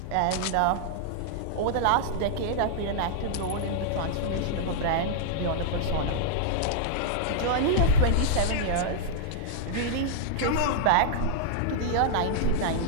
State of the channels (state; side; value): different; both; correlation -0.01